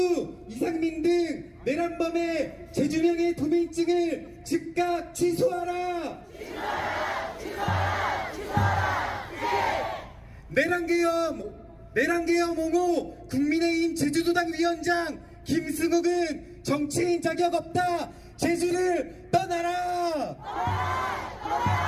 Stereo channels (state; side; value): identical; both; correlation 1.00